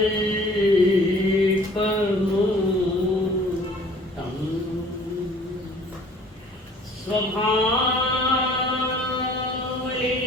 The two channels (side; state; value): both; normal; correlation 0.53